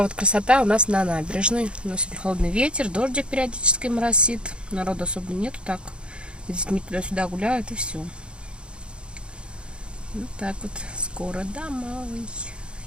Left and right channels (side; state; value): left; late; 0.055 ms